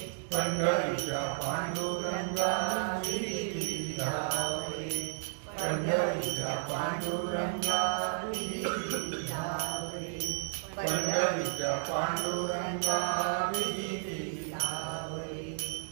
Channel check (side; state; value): left; silent; digital silence